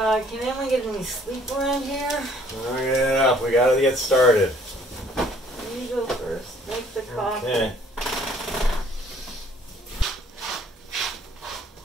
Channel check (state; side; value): normal; both; correlation 0.60